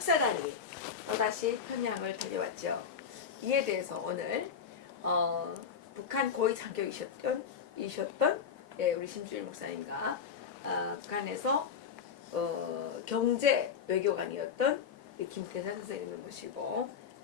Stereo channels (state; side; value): quieter; right; 6.8 dB